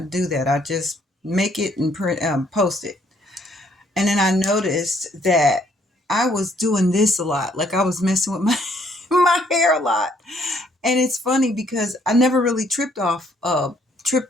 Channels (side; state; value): both; normal; correlation 0.66